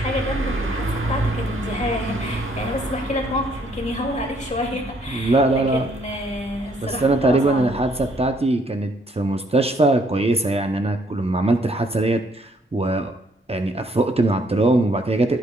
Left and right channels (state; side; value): normal; both; correlation 0.67